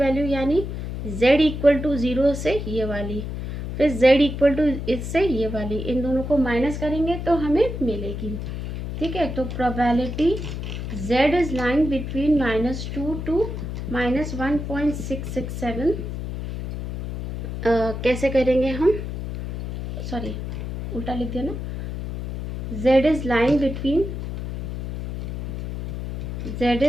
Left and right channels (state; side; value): noise; left; hum, 5 dB below the sound